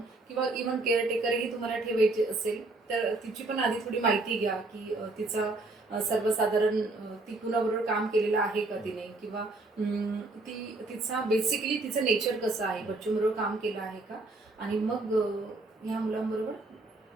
किंवा इव्हन केअरटेकरही तुम्हाला ठेवायचे असेल तर तिची पण आधी थोडी माहिती घ्या की तिचा सर्वसाधारण ती कुणाबरोबर काम केलेलं आहे का तिने, किंवा बेसिकली तिचं नेचर कसं आहे, बच्चूबरोबर काम केलं आहे का, आणि मग ह्या मुलांबरोबर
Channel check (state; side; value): quieter; left; 3.1 dB